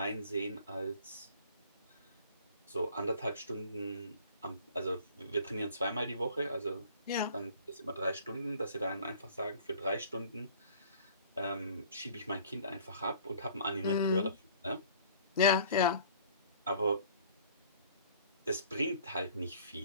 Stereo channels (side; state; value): both; inverted; correlation -0.51